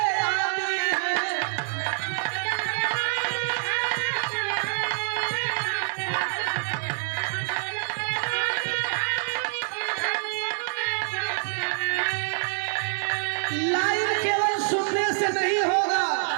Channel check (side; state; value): left; silent; 61 dB below the other